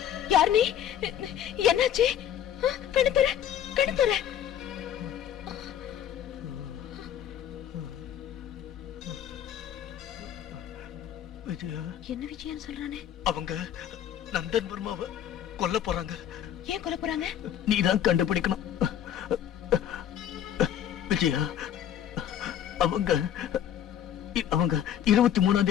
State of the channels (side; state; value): right; quieter; 10.2 dB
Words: யார் நீ? என்னாச்சு? கணத்துற கணத்துற. என்ன விஜயன் சொல்றானே? அவங்க நந்தன் வர்மாவை கொல்ல போறாங்க. ஏன் கொல்ல போறாங்க? நீதான் கண்டுபிடிக்கணும் விஜயா. அவங்க 23ஆம்